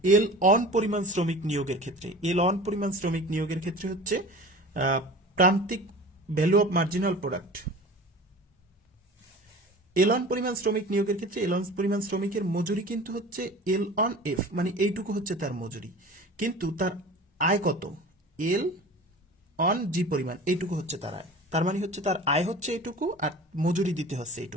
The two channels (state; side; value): normal; both; correlation 0.39